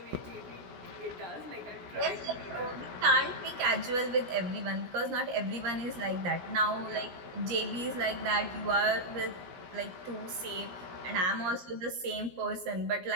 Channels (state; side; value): late; left; 16 ms